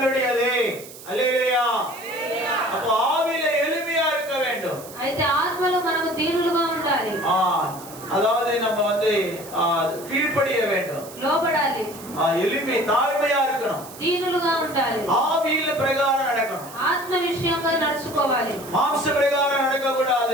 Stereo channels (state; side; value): noise; right; hiss, 17 dB below the sound